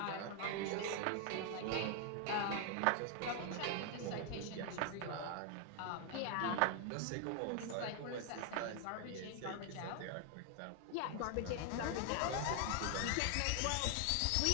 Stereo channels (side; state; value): both; different; correlation 0.00